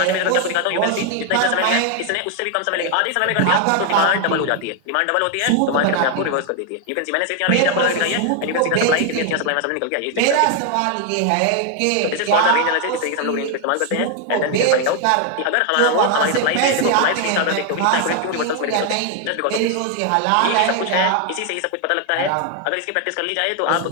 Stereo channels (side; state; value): both; different; correlation 0.00